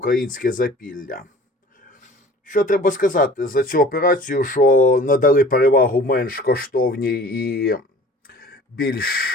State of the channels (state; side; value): normal; both; correlation 0.46